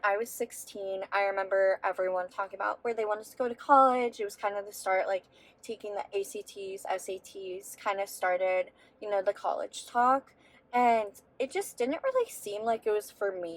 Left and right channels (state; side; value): identical; both; correlation 1.00